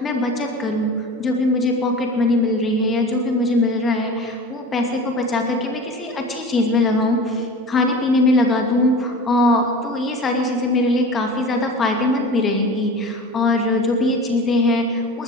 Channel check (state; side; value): normal; both; correlation 0.36